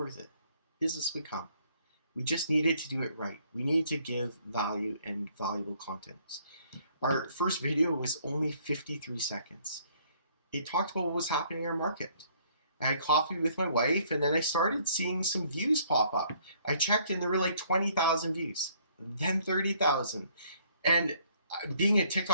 it. Business would come. We just needed to do it right. We needed to give value and valuable content. Our first video was only 53 seconds. It talked about what was happening in our market. I had coffee with my wife, and then I started seeing some views pop up. I checked, and there were like 20,000 views, then 30,000. And being a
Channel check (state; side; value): inverted; both; correlation -0.63